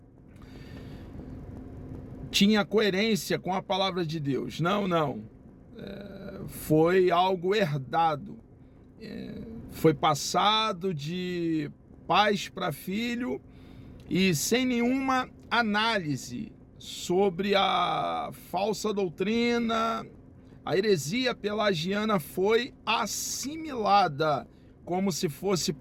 tinha coerência com a palavra de Deus. Não. Foi algo herdado. Foi passado de pais para filho e sem nenhuma análise sobre a falsa doutrina. A heresia pelagiana foi assimilada como se fosse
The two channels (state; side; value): identical; both; correlation 1.00